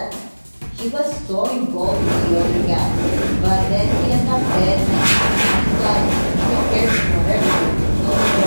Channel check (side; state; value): both; inverted; correlation -1.00